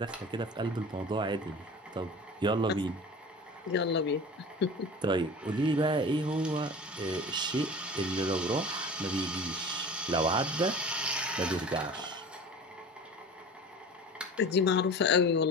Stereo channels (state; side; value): normal; both; correlation 0.38